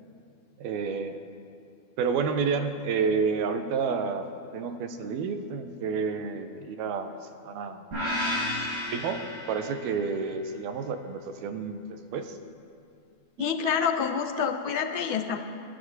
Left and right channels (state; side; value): late; left; 12 ms